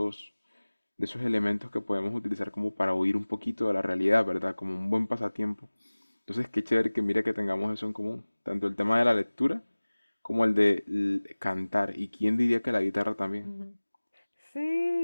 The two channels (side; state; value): both; inverted; correlation -1.00